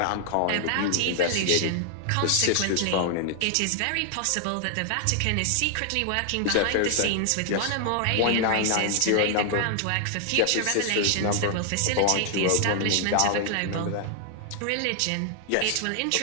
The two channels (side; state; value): both; different; correlation 0.00